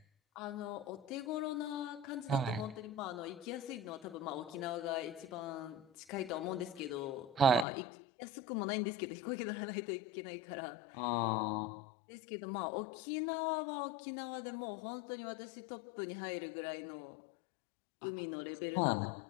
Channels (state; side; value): drops out; right; at 7.7 s